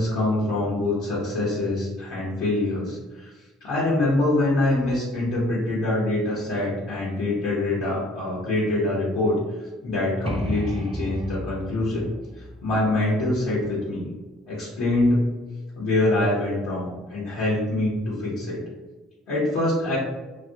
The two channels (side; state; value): both; normal; correlation 0.56